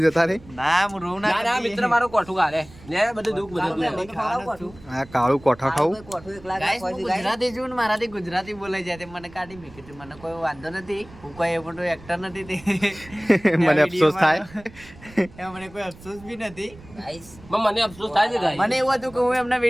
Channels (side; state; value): right; noise; rumble, 21 dB below the sound